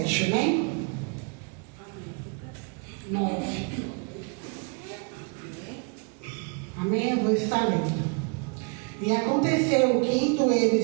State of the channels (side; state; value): left; quieter; 35.2 dB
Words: amém? 9. Amém? Eu vou estar lendo. E aconteceu que, indo